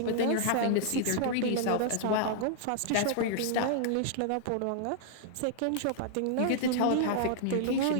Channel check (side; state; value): both; different; correlation -0.01